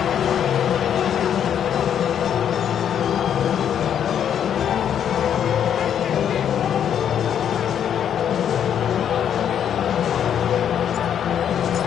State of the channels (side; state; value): right; quieter; 9.1 dB